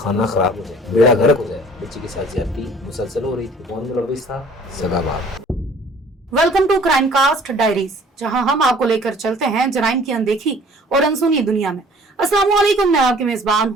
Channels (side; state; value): both; normal; correlation 0.53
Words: کھانا خراب ہو جائے, بیڑا غرق ہو جائے. بچی کے ساتھ زیادتی مسلسل ہو رہی تھی, کون ملوث تھا؟ سگا باپ. Welcome to crime cast diaries, جہاں ہم آپ کو لے کر چلتے ہیں جرائم کی اندیکھی اور انسونی دنیا میں. السلام علیکم, میں آپ کی میزبان